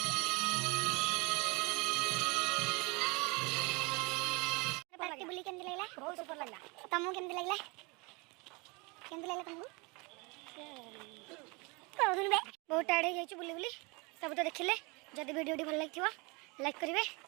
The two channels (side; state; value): left; quieter; 28.1 dB